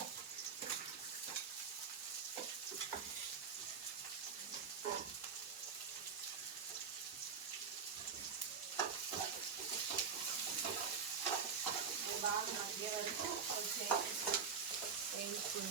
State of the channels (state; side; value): quieter; left; 5.8 dB